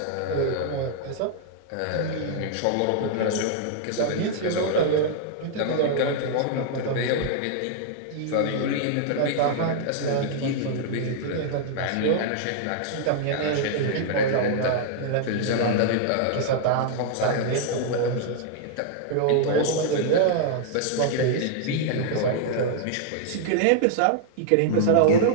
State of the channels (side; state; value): both; different; correlation -0.01